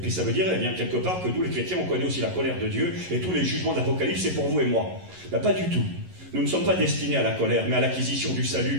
ça veut dire, eh bien, quelque part, que nous, les chrétiens, on connaît aussi la colère de Dieu, et tous les jugements d'Apocalypse, c'est pour vous et moi. Ben, pas du tout. Nous ne sommes pas destinés à la colère, mais à l'acquisition du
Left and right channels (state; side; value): late; left; 11 ms